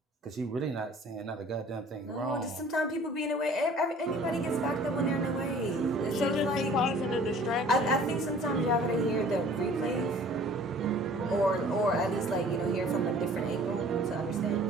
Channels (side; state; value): both; normal; correlation 0.50